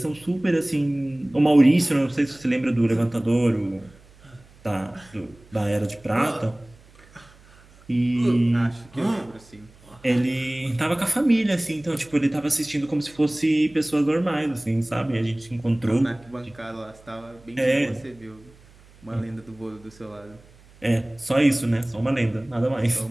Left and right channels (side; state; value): right; noise; hum, 26 dB below the sound